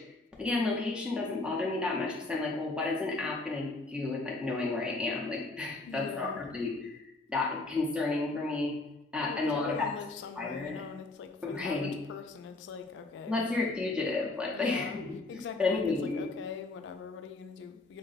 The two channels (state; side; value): quieter; right; 3.1 dB